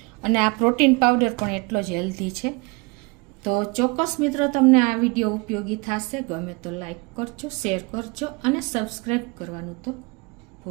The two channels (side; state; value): left; quieter; 27.7 dB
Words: અને આ પ્રોટીન પાવડર પણ એટલો જ હેલ્ધી છે. તો ચોક્કસ મિત્રો તમને આ વિડીયો ઉપયોગી થશે. ગમે તો લાઈક કરજો, શેર કરજો અને સબસ્ક્રાઈબ કરવાનું તો